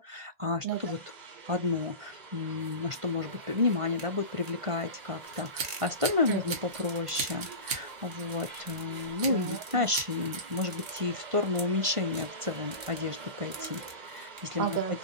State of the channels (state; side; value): late; left; 1.5 ms